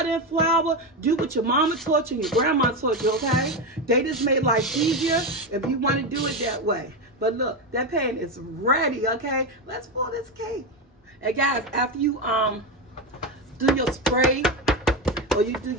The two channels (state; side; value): normal; both; correlation 0.13